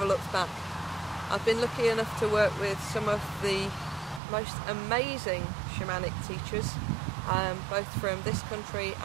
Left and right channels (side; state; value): left; drops out; at 4.2 s